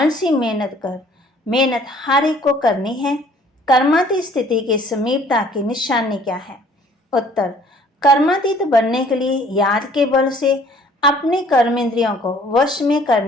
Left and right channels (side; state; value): both; normal; correlation 0.56